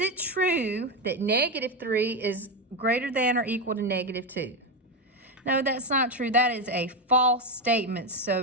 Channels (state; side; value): normal; both; correlation 0.11